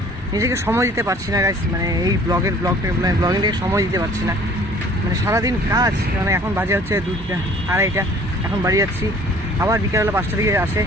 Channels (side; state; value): both; normal; correlation 0.52